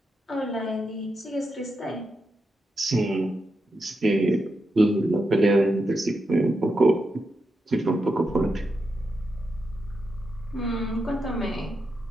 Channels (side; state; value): both; normal; correlation 0.86